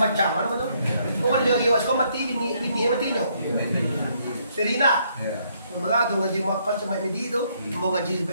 ano betul. Pokok dia iwas ko mati bini mati nyo. Serina. Mga tu ngaji mapan sa may medido, mo ngaji sa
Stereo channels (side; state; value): both; inverted; correlation -0.70